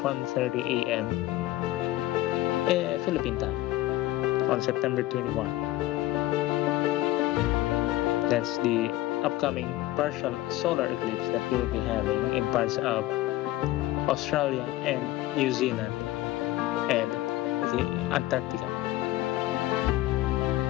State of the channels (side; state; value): right; quieter; 16.5 dB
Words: 1:30 a.m. Philippine time on September 21. That's the upcoming partial solar eclipse that we will be having in parts of Australia and New Zealand and the Antarctica.